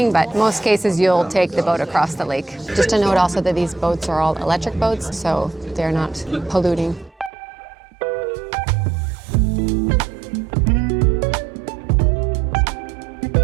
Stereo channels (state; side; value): drops out; left; at 7.3 s